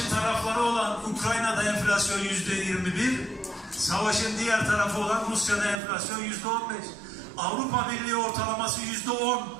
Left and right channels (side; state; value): left; drops out; at 5.8 s